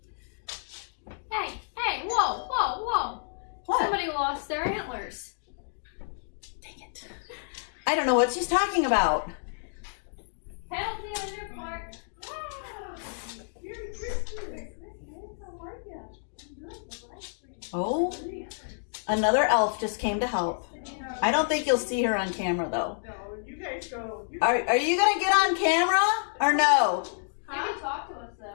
Hey, whoa. What? Somebody lost their antlers. Dang it. I don't know what she's talking about. Penalty on your part. Merry Christmas. How are you? I'm good. Oh, another elf just came to help. I don't think you'll see her on camera though. No, you guys go. Are you gonna get on camera or no? You can talk to us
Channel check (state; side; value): silent; right; digital silence